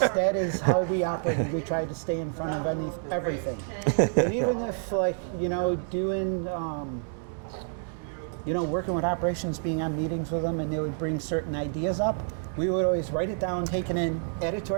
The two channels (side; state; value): left; silent; digital silence